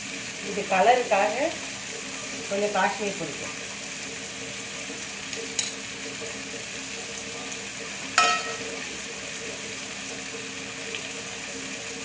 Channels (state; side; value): identical; both; correlation 1.00